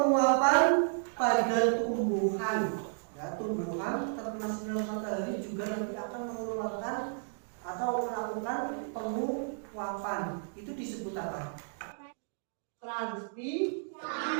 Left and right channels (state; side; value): silent; left; digital silence